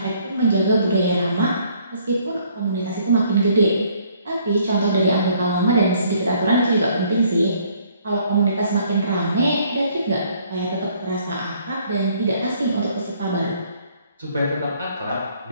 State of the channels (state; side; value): inverted; both; correlation -0.63